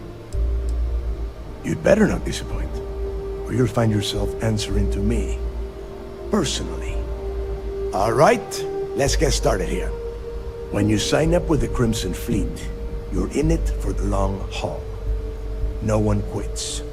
You'd better not disappoint, or you'll find yourself answering to me, personally. All right, let's get started here. When you sign up with the Crimson Fleet, you're in it for the long haul. No one quits.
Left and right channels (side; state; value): both; identical; correlation 1.00